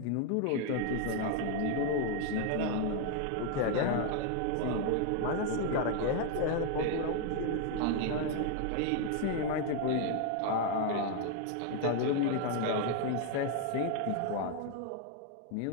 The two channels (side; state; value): both; different; correlation 0.01